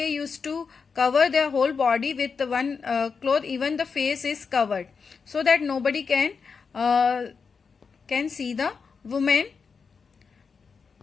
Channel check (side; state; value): right; quieter; 5.4 dB